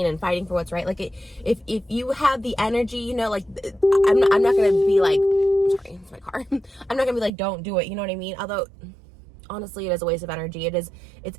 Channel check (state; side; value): drops out; left; at 7.3 s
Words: And fighting for what's right. Like, if you have the energy, like, I'm not gonna be like, sorry, it's my car. I'm not gonna be like, don't do it, you know what I mean? Although, honestly, it is a waste of energy. It's